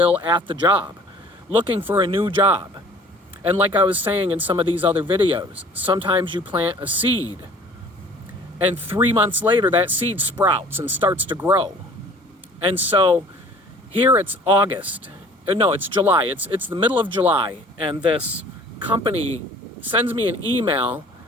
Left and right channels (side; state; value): both; normal; correlation 0.50